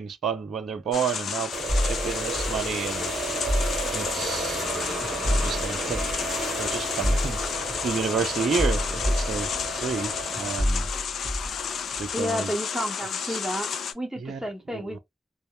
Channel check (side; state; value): both; normal; correlation 0.72